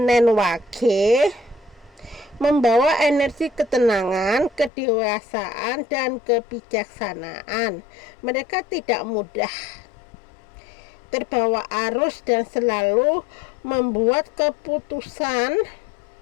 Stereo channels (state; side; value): drops out; right; at 4.7 s